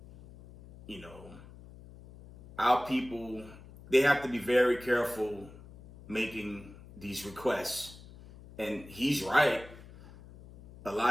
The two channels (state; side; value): noise; left; hum, 19 dB below the sound